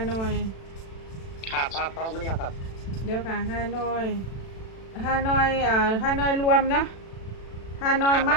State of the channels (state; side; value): late; right; 36 ms